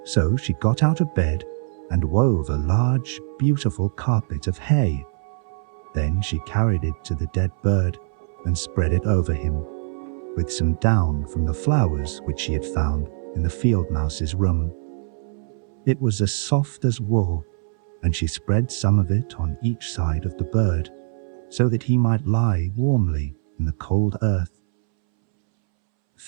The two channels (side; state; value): left; silent; 63 dB below the other